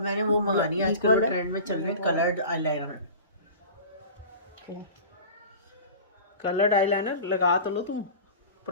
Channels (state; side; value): inverted; both; correlation -0.37